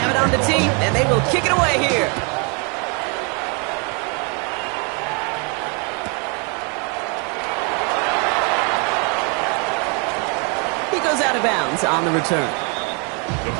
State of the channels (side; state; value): left; quieter; 35.2 dB